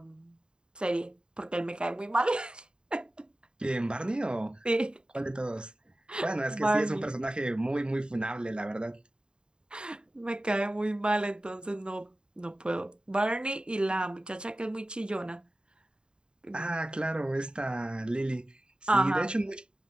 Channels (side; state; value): left; late; 0.049 ms